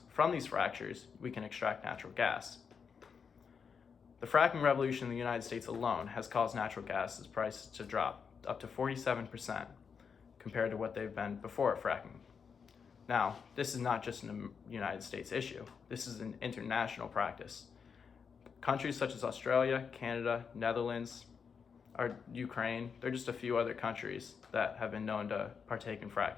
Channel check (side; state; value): right; quieter; 6.2 dB